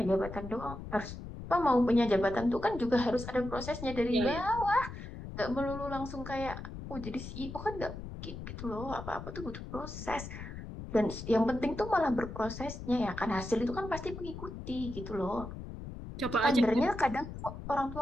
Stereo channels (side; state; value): left; noise; rumble, 10 dB below the sound